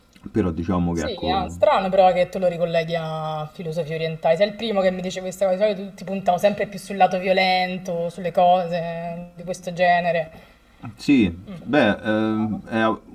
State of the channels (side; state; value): both; identical; correlation 1.00